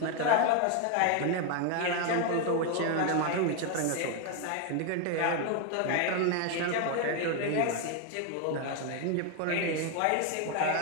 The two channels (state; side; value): different; both; correlation 0.01